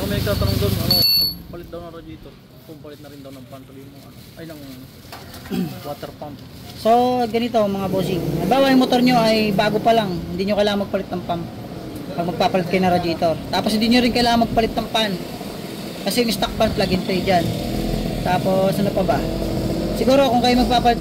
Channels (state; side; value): identical; both; correlation 1.00